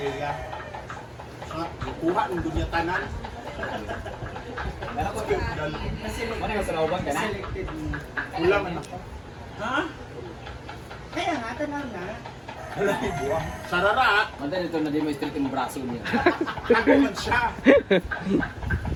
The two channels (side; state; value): both; identical; correlation 1.00